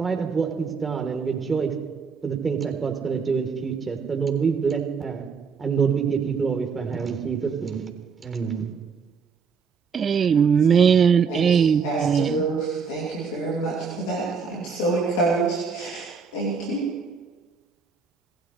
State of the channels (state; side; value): quieter; left; 5.7 dB